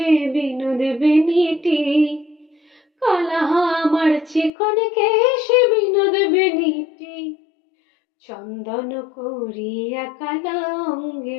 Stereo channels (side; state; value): right; drops out; at 4.5 s